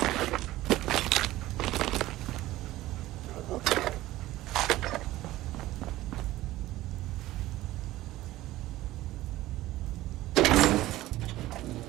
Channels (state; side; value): quieter; left; 16.3 dB